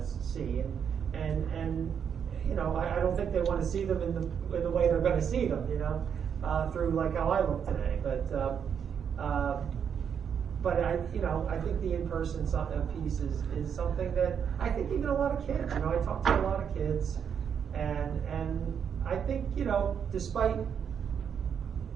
see, and you know, I don't think they want to see them in the way they're going to see them. You know, through like how I look today, but I think the in-person piece is something that I think even a lot of kids, you know, I talk to a lot of kids, and I think, you know, despite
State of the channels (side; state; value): left; quieter; 7.6 dB